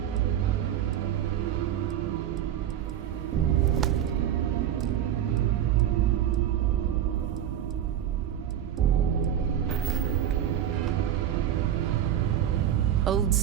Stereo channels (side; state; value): left; quieter; 10.4 dB